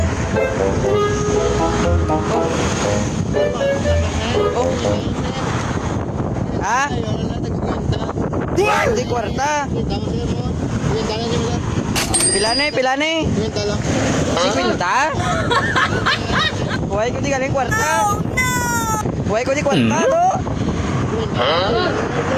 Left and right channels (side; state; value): both; identical; correlation 1.00